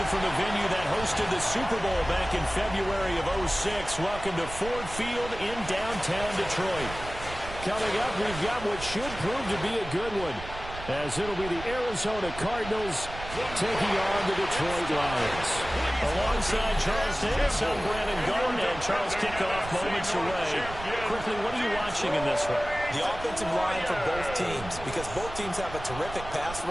from the venue that hosted the Super Bowl back in February of '06. Welcome to Ford Field in downtown Detroit. Coming up, we've got what should prove to be a good one, as it'll be the Arizona Cardinals taking on the Detroit Lions. Alongside Charles Davis, I'm Brandon Garden, and Charles, kickoff moments away. Quickly, what are you watching in this one? The offensive line for both teams, because both teams have a terrific pass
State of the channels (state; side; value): noise; right; rumble, 12 dB below the sound